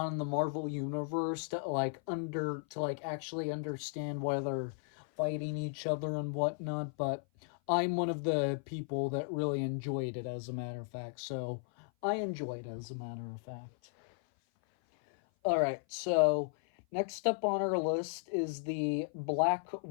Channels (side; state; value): right; silent; 54 dB below the other